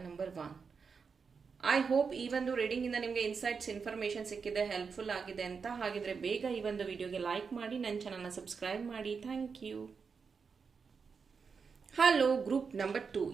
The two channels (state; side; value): quieter; left; 5.5 dB